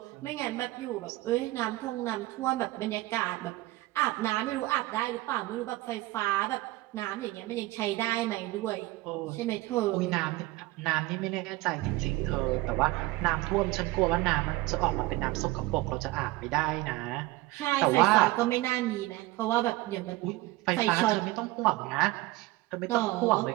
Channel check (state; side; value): quieter; left; 19.4 dB